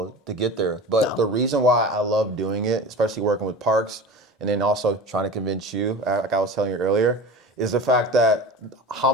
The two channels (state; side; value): normal; both; correlation 0.33